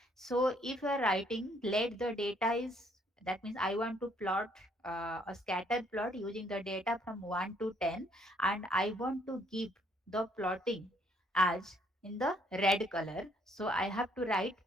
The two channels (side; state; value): both; normal; correlation 0.66